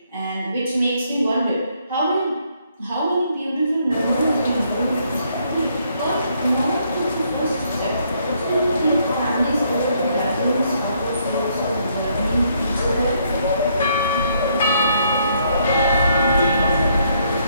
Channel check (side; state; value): both; inverted; correlation -0.71